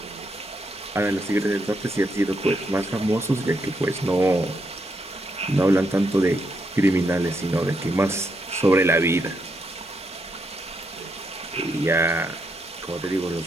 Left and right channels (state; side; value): normal; both; correlation 0.79